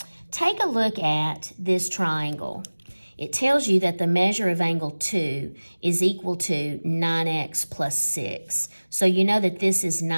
take a look at this triangle. It tells you that the measure of angle 2 is equal to 9x plus 6. So you know that this is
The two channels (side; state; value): both; inverted; correlation -1.00